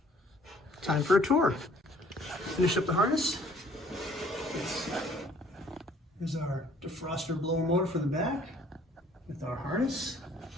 Time for a tour. Finish up the harness. Here's our defroster blower motor for the back with our harness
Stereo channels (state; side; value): normal; both; correlation 0.58